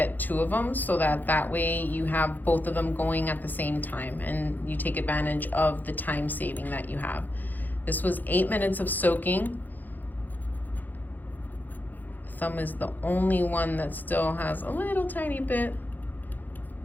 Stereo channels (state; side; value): late; right; 0.085 ms